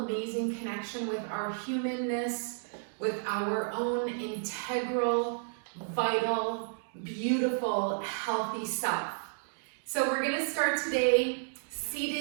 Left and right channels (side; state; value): left; silent; digital silence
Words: connection with our humanness, with our own integral, vital, beautiful, healthy self. So we're going to start today